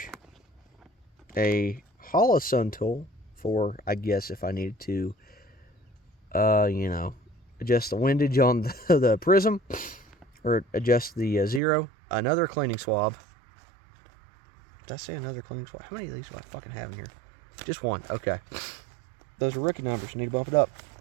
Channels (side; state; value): left; drops out; at 11.6 s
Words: a Holosun tool for, I guess, if I needed to, adjust the windage on the prism, or adjust the zero, another cleaning swab. Did I say another cleaning swab? How many of these do I fucking have in here? Just one. Okay. Those are rookie numbers. Need to bump it up.